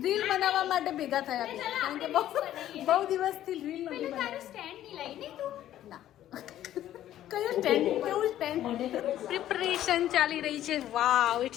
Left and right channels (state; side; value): quieter; right; 12.4 dB